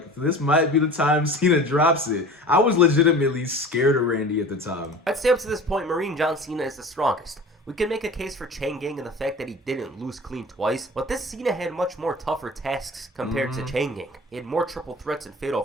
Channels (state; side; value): normal; both; correlation 0.39